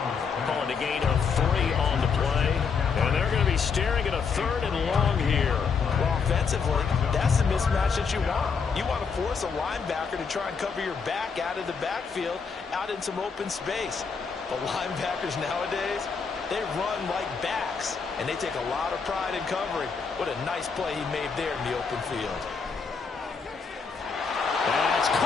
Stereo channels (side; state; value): right; quieter; 5.6 dB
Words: Calling a gain of 3 on the play. And they're going to be staring at a 3rd and long here. Well, offensively, that's the mismatch that you want. You want to force a linebacker to try and cover your back out of the backfield, out in some open space. The linebackers nowadays, they run like backs, and they take a lot of pride in covering. What a nice play he made there in the open field. That's